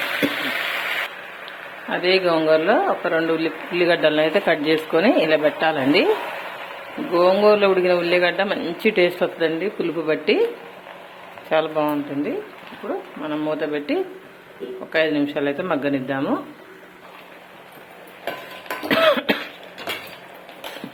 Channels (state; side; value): identical; both; correlation 1.00